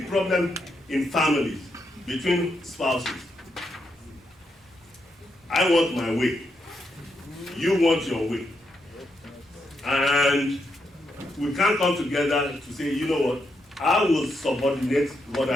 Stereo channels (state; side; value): normal; both; correlation 0.81